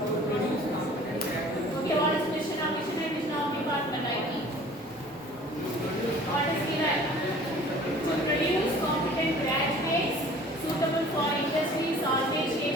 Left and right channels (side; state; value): both; normal; correlation 0.48